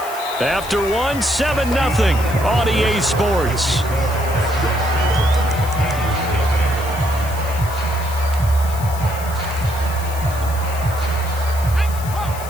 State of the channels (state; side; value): noise; left; hiss, 14 dB below the sound